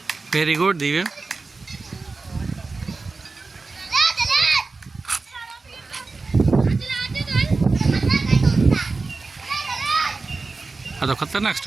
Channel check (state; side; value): quieter; left; 3.9 dB